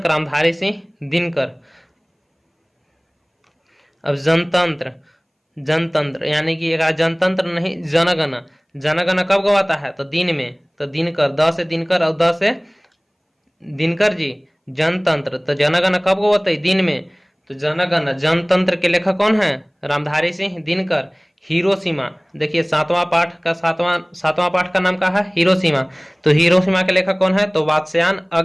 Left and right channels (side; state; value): both; identical; correlation 1.00